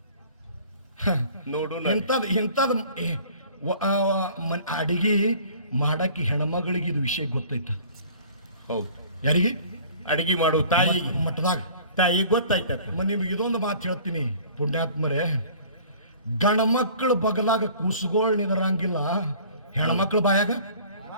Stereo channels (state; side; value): inverted; both; correlation -0.49